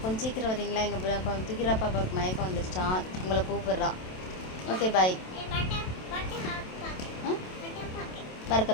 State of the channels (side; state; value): right; late; 27 ms